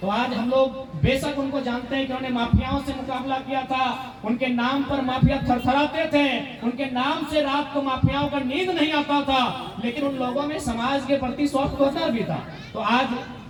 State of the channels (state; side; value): identical; both; correlation 1.00